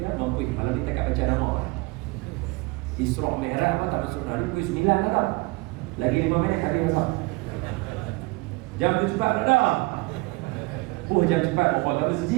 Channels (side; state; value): left; quieter; 24.6 dB